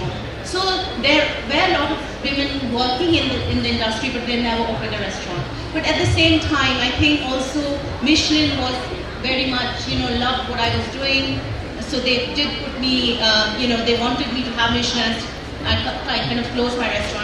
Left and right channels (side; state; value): both; identical; correlation 1.00